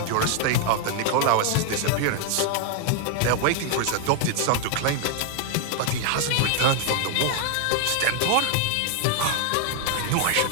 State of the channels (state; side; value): different; both; correlation 0.00